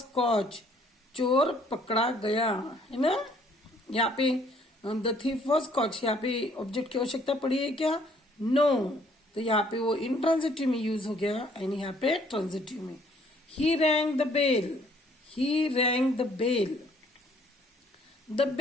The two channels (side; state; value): both; normal; correlation 0.62